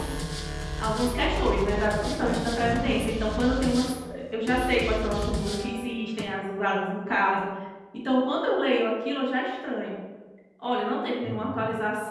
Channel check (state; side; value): identical; both; correlation 1.00